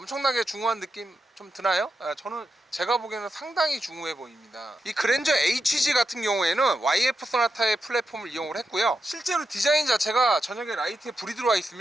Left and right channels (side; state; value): both; normal; correlation 0.87